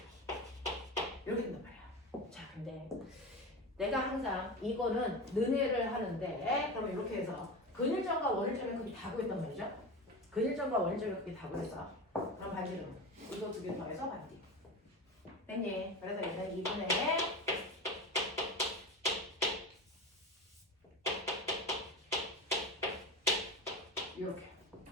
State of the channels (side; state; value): both; normal; correlation 0.26